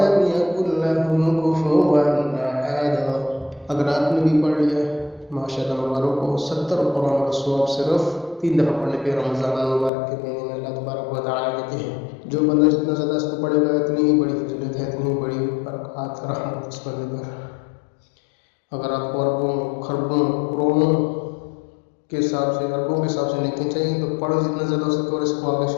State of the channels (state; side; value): drops out; right; at 9.9 s